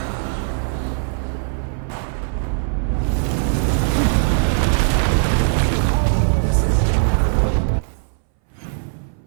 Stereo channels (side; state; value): left; silent; 63 dB below the other